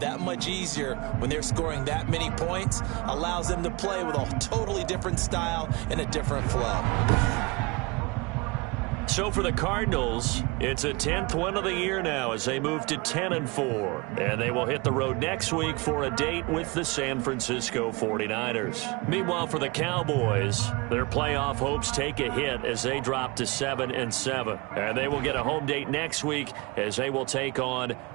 much easier when they're scoring that many points. Allows them to play with a totally different style and a different flow. So for the Cardinals, it's a 10th win of the year now as they move to 10-4. And they will hit the road next week for a date with the San Francisco 49ers. Meanwhile, for the Cowboys, their playoff hopes take a hit as they drop to 7-7. And they will get a home date next week as they will take on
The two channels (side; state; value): left; quieter; 26.4 dB